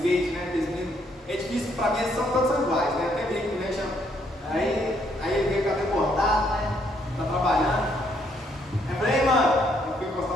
né? É difícil, pra mim eles são todos iguais, né? Até brinco, né? Aí ele veio com o cabelo cortado, né? Tá trabalhando. Aí eu falei, ei, mano, eu fui encostar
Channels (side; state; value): both; normal; correlation 0.71